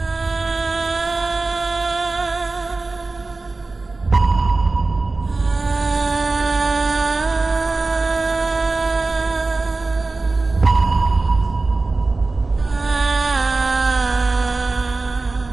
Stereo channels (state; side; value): quieter; left; 3.5 dB